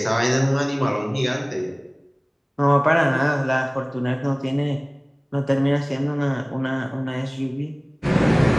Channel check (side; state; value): both; identical; correlation 1.00